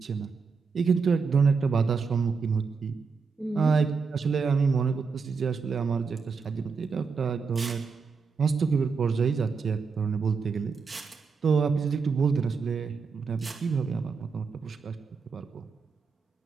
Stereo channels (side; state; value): left; quieter; 5.2 dB